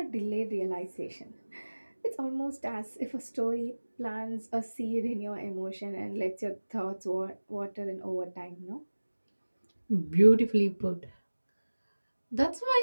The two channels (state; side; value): inverted; both; correlation -1.00